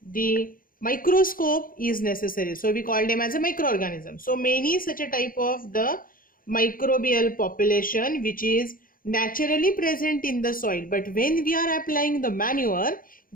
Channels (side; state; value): right; late; 0.41 ms